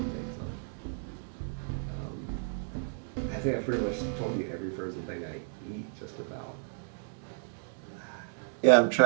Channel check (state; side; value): silent; left; digital silence